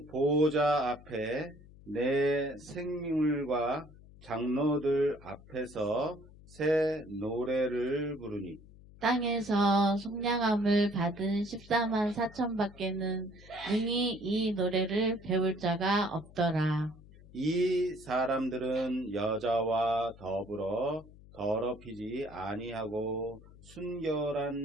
보호자 앞에 내 생물과 장로들 앞에서 새 노래를 부르니 땅에서 속량함을 받은 14만 4천 밖에는 능히 이 노래를 배울 자가 없더라. 이 사람들은 여자와 더불어 더럽히지 아니하고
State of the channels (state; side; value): noise; left; hum, 21 dB below the sound